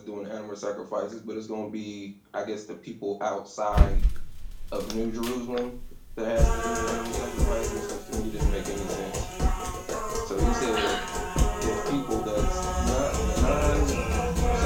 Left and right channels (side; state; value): both; identical; correlation 1.00